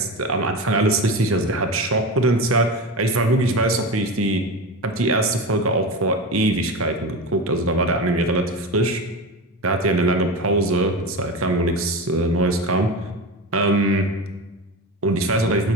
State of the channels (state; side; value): normal; both; correlation 0.24